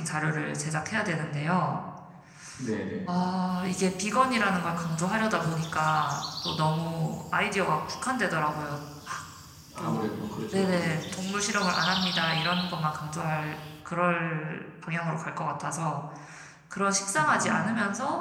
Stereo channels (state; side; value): identical; both; correlation 1.00